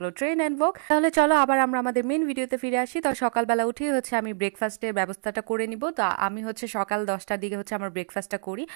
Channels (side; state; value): left; silent; digital silence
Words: ট্রেন অ্যান্ড ওয়াক। তাহলে চলো আবার আমরা আমাদের মেন ভিডিওতে ফিরে আসি। তো সকালবেলা উঠেই হচ্ছে আমি ব্রেকফাস্টের ব্যবস্থাটা করে নিব। তো আমি হচ্ছে সকাল 10টার দিকে হচ্ছে আমার ব্রেকফাস্টটা করি।